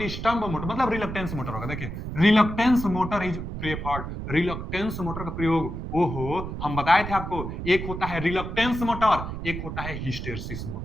मोटर मतलब रिलक्टेंस मोटर होगा। देखिए reluctance motor is preferred. Reluctance motor का प्रयोग, ओहो, हम बताए थे आपको, एक होता है रिलक्टेंस मोटर, एक होता है हिस्टेरिसिस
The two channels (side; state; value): right; noise; rumble, 6 dB below the sound